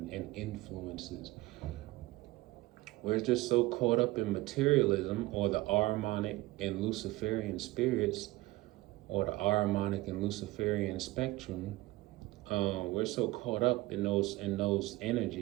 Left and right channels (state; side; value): quieter; left; 19.2 dB